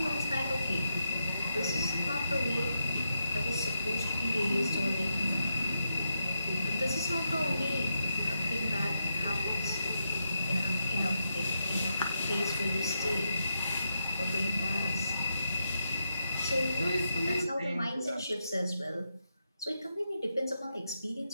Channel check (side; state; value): both; inverted; correlation -0.83